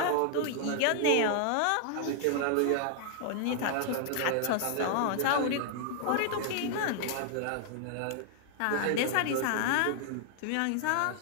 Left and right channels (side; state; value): both; different; correlation 0.00